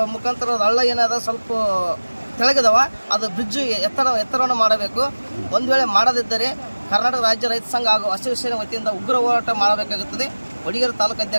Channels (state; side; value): inverted; both; correlation -1.00